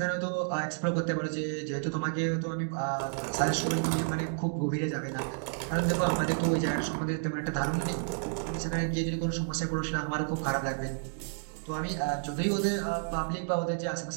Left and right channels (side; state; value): left; silent; digital silence